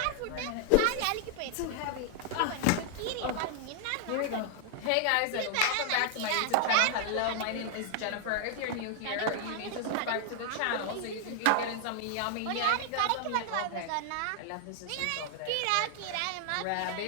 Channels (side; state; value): both; different; correlation 0.00